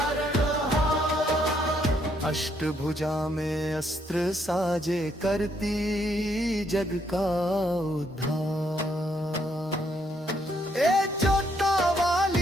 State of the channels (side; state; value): both; normal; correlation 0.72